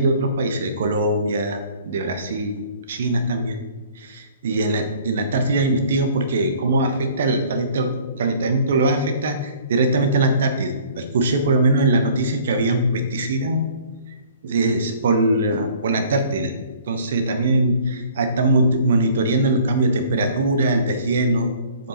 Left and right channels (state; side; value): inverted; both; correlation -0.53